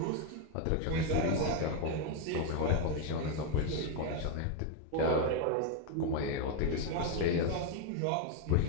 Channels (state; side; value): different; both; correlation 0.02